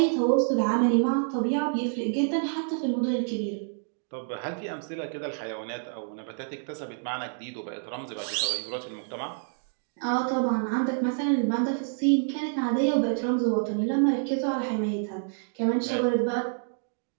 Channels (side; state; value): left; silent; digital silence